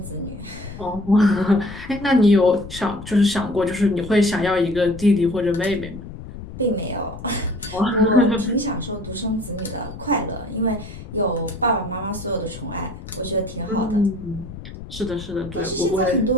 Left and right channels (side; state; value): left; noise; rumble, 13 dB below the sound